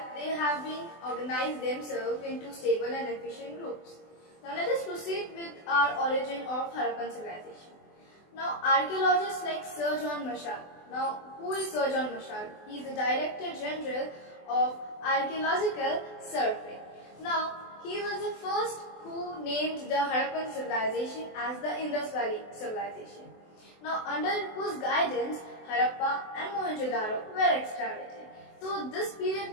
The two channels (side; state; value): right; late; 24 ms